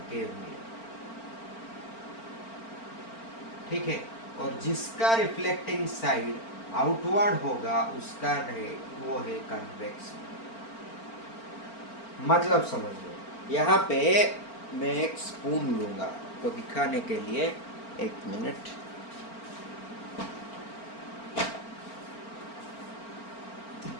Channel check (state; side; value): late; right; 4.4 ms